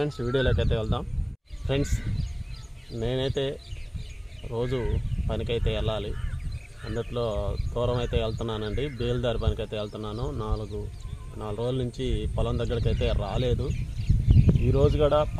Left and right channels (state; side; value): identical; both; correlation 1.00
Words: వీడియోలోకి అయితే వెళ్దాం. ఫ్రెండ్స్, నేనైతే రోజు పనికైతే వెళ్ళాలి. అందుట్లో దూరం అయితే వెళ్తున్నానండి. బేల్దారి పనికి అయితే వెళ్తున్నాను. నాలుగు రోజుల నుంచి పొలం దగ్గరికి అయితే రాలేదు. ఈరోజు కూడా